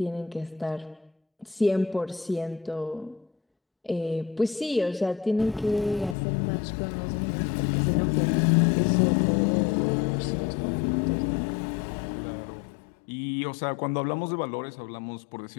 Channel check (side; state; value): right; drops out; at 6.2 s